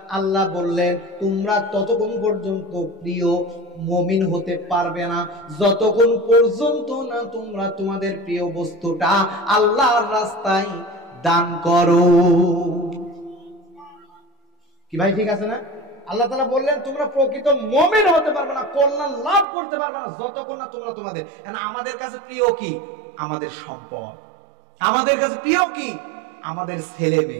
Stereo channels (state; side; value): drops out; left; at 19.5 s